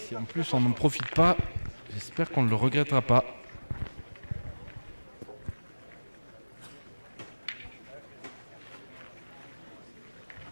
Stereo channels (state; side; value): inverted; both; correlation -1.00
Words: en plus on n'en profite pas, j'espère qu'on ne le regrettera pas.